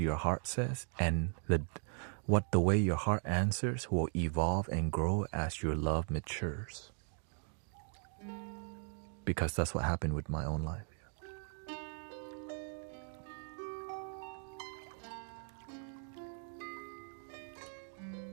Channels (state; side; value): silent; left; 52 dB below the other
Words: heart says, and the way your heart answers will evolve and grow as your love matures. Because that's what happened with my own life.